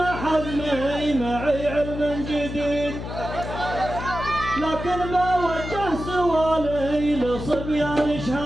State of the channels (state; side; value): noise; left; hum, 7 dB below the sound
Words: حزمي معي علم جديد، لكن بوجه سوالي لصبيان